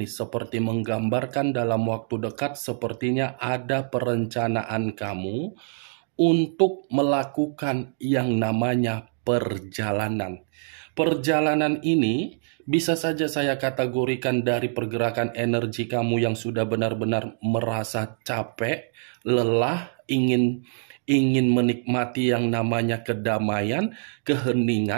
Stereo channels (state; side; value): silent; left; digital silence